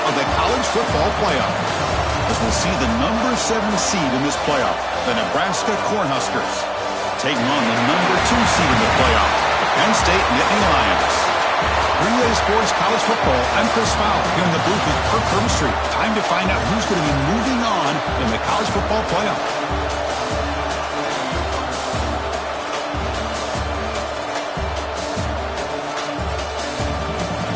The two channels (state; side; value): identical; both; correlation 1.00